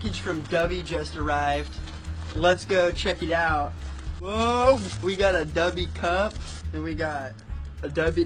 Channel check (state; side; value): identical; both; correlation 1.00